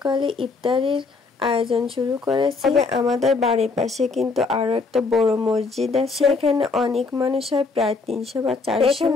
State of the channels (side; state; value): right; quieter; 4.2 dB